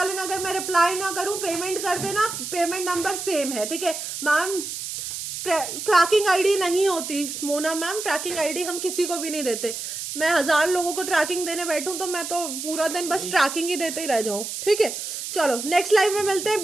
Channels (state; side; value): noise; right; hiss, 6 dB below the sound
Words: लेना। अगर मैं रिप्लाई ना करूँ पेमेंट कर देना, पेमेंट नंबर सेम है। ठीक है मैम, ट्रैकिंग आईडी नहीं होती मोना मैम, ट्रैकिंग आईडी हम किसी को भी नहीं देते। मैं 1000 लोगों को ट्रैकिंग देने बैठूं तो मैं तो पूरा दिन बस ट्रैकिंग ही देते ही रह जाऊं। ठीक है चलो नेक्स्ट लाइव में मिलते हैं